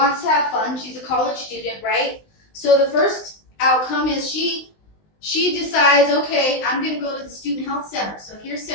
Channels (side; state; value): right; late; 19 ms